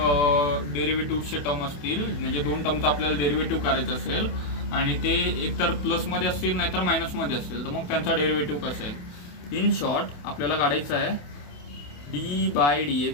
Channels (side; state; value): right; late; 28 ms